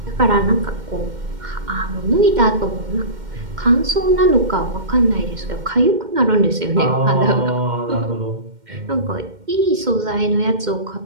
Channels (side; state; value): left; late; 2.1 ms